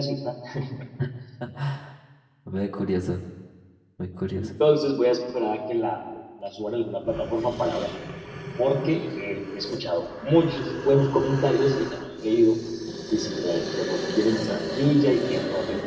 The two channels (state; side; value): identical; both; correlation 1.00